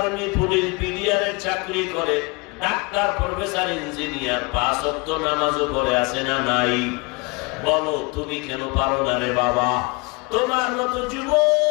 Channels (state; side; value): quieter; right; 28.2 dB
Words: পুলিশ, বিডিআরের চাকরি করে, ডাক্তার, প্রফেসর, ইঞ্জিনিয়ার, 5 ওয়াক্ত নামাজও পড়ে আছে না নাই? বলো তুমি কেন পারো না রে বাবা? তোমার মতো